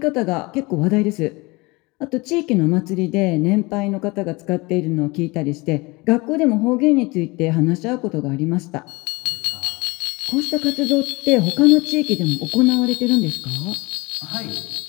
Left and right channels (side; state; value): right; quieter; 24.3 dB